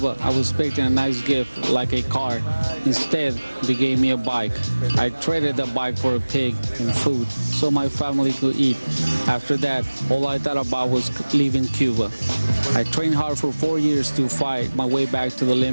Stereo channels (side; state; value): both; inverted; correlation -1.00